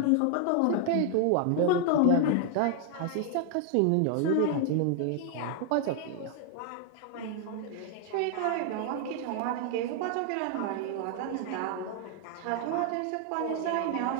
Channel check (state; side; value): different; both; correlation 0.00